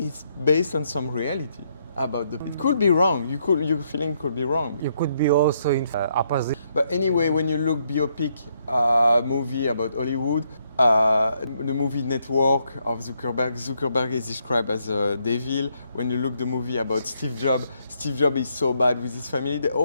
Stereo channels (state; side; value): inverted; both; correlation -0.75